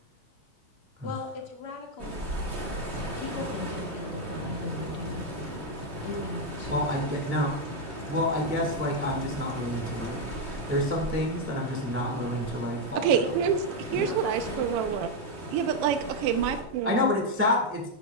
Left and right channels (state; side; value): normal; both; correlation 0.01